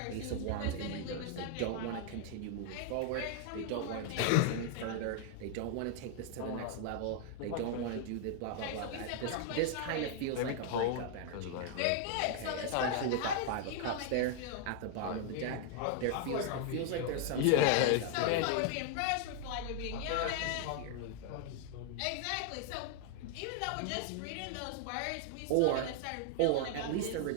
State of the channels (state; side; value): different; both; correlation 0.00